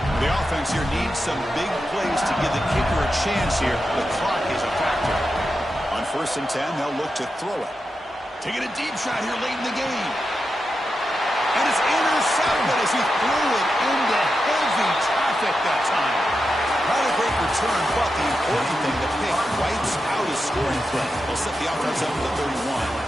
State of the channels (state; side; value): normal; both; correlation 0.89